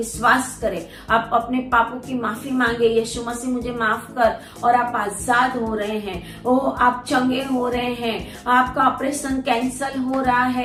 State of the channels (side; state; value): both; identical; correlation 1.00